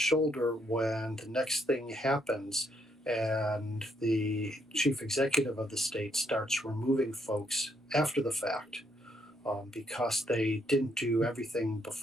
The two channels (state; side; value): normal; both; correlation 0.74